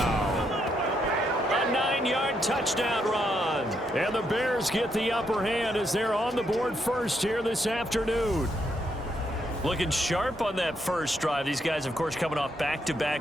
A 9-yard touchdown run. And the Bears get the upper hand as they're on the board first here this afternoon. Looking sharp on that first drive. These guys, of course, coming off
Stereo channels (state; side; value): normal; both; correlation 0.77